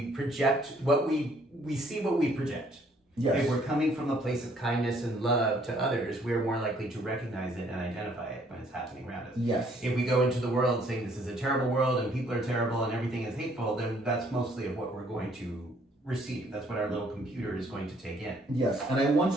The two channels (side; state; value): both; normal; correlation 0.63